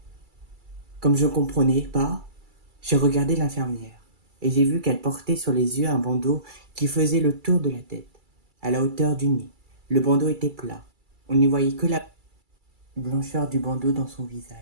». Comme je ne comprenais pas, j'ai regardé l'infirmière et j'ai vu qu'elle portait sur les yeux un bandeau qui faisait le tour de la tête, à la hauteur du nez. Le bandeau était plat. On n'y voyait que la blancheur du bandeau dans son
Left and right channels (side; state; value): left; late; 2.3 ms